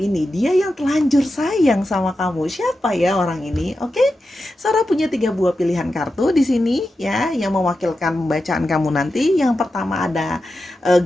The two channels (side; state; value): both; normal; correlation 0.90